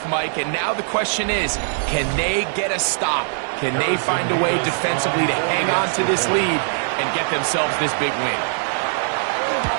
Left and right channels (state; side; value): silent; left; digital silence